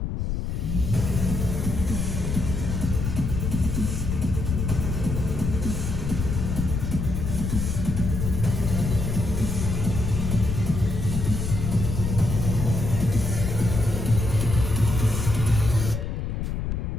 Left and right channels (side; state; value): left; noise; rumble, 2 dB below the sound